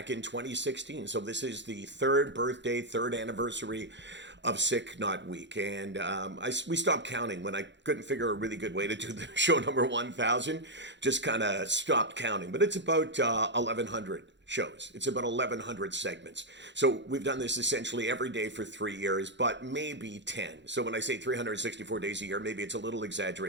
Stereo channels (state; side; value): late; left; 0.52 ms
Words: in 2016. So this is the third birthday, third anniversary of SickNotWeak. And we stopped counting when I couldn't figure a really good way to do the show number 1000. Just kind of stopped counting. But it's about 1,100 shows. It's about 1,100 segments. So we've done this essentially every day for 3 years, but maybe 10. So when I say 364 days a year, maybe it's a little